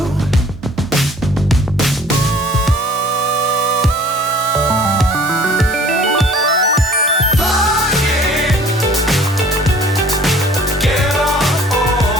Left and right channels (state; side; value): normal; both; correlation 0.51